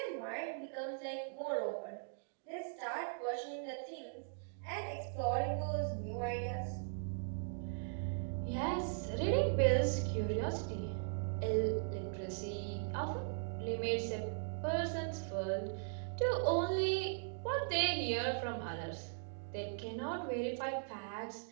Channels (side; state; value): left; silent; digital silence